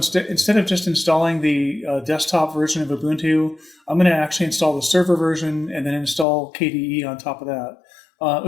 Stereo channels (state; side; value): drops out; right; at 6.2 s